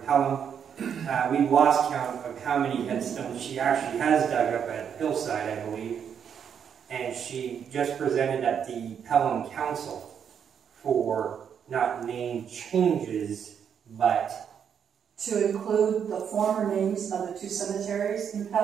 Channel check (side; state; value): left; quieter; 7.9 dB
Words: Pelham. We've lost count of how many headstones she actually has dug up at Hillside, I believe. And she just presented at the Pelham Council for not name changes, but to include the former names of the two cemeteries in